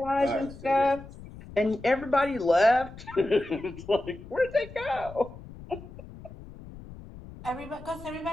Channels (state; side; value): noise; left; rumble, 16 dB below the sound